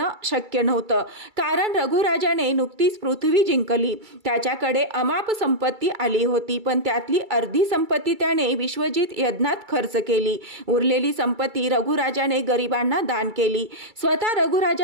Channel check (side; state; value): left; late; 2.3 ms